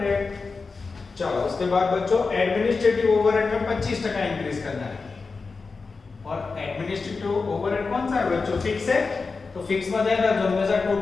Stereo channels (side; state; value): right; quieter; 4.4 dB